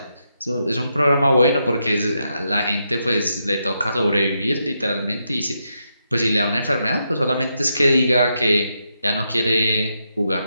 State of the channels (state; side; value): inverted; both; correlation -0.82